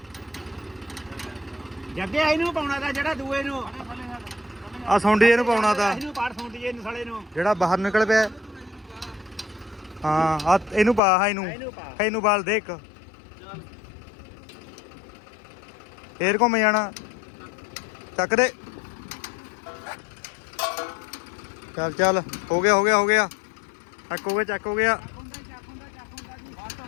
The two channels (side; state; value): right; drops out; at 11.0 s